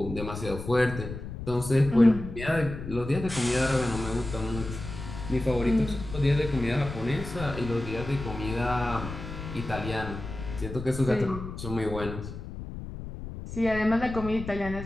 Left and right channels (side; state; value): left; noise; rumble, 9 dB below the sound